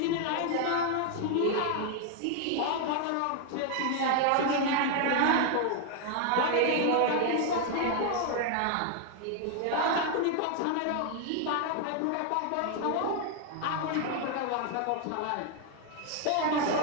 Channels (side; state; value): both; different; correlation 0.00